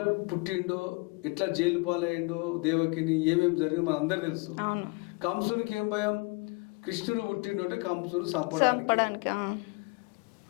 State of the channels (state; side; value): quieter; right; 28.2 dB